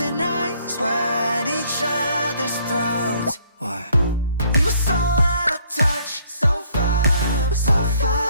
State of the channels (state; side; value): inverted; both; correlation -0.63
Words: ice, we're at each other's throats. What? We were so out of touch, so far